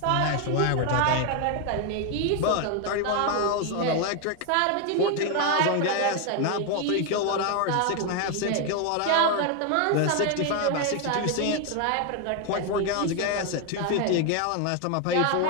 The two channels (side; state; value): both; different; correlation 0.01